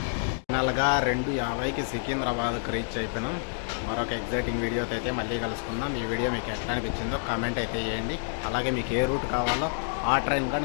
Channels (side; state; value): right; silent; digital silence